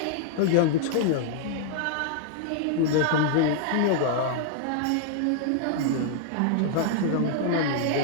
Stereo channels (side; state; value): both; different; correlation -0.01